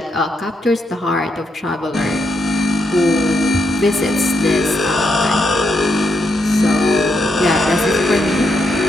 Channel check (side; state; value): both; normal; correlation 0.80